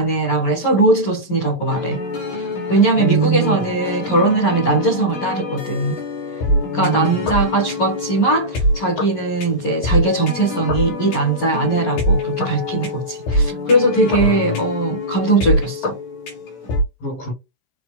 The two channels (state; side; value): late; right; 16 ms